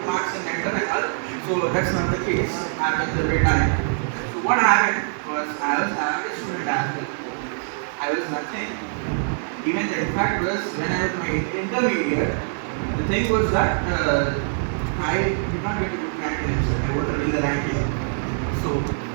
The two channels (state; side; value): silent; left; digital silence